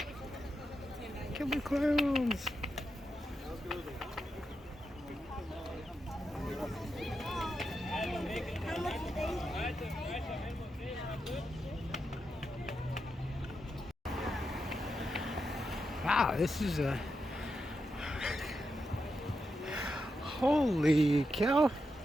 Killer clowns. Wow, this is a holy cow.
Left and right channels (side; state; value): both; normal; correlation 0.86